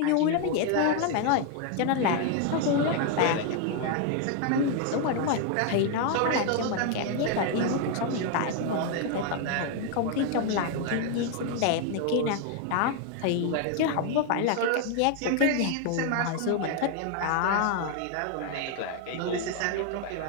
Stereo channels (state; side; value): different; both; correlation 0.00